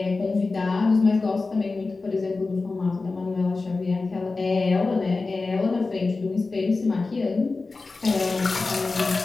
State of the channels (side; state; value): right; quieter; 3.8 dB